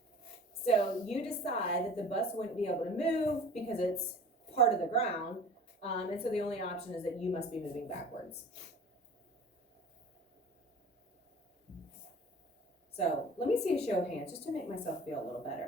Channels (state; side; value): normal; both; correlation 0.42